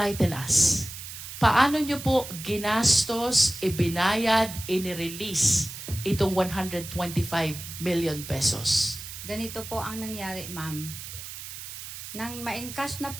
us. Paano nyo po ginastos, ibinayad, inirelease itong 125 million pesos? Ganito po ang nangyari, ma'am. Nang ma-encash na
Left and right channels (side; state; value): right; noise; hiss, 10 dB below the sound